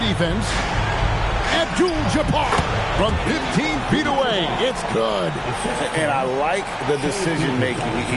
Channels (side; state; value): both; identical; correlation 1.00